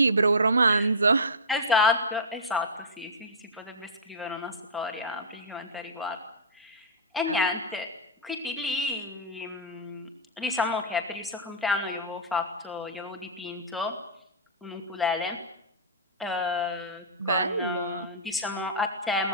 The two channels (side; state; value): both; normal; correlation -0.17